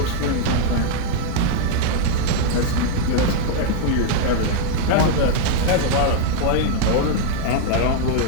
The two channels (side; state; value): both; different; correlation 0.00